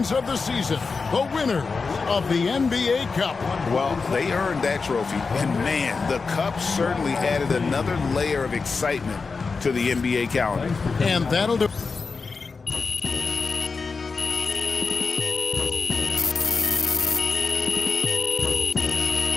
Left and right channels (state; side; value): quieter; right; 4.6 dB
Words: of the season, the winners of the NBA Cup. Well, they earned that trophy, and man, the Cup certainly added another layer of excitement to the NBA calendar. And that'll do.